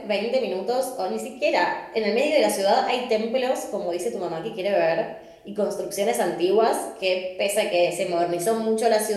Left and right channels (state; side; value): identical; both; correlation 1.00